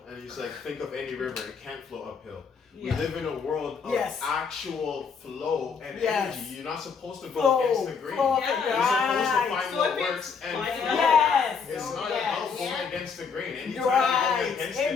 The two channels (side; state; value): right; quieter; 5.8 dB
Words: And he's like, think of any river, it can't flow uphill. We Yeah. live in a world of Yes. actual flow and Yes. energy. You're not supposed to go Flow. against the grain. Flow of Yeah. it. You're supposed to Right. find So what if it's works and finding flow. out- Yes. It's not Yes. about going Yeah. against the grain. Anytime Right. you go against Amen.